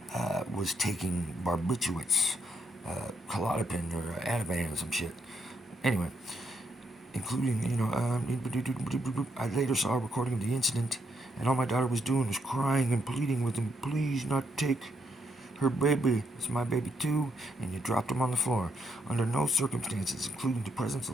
was taking barbiturates, Klonopin or Ativan or some shit. Anyway, including, I later saw a recording of the incident, and all my daughter was doing was crying and pleading with him, please not take her baby, it's my baby too, and you dropped him on the floor. Under no circumstances, including the presence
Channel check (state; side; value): normal; both; correlation 0.77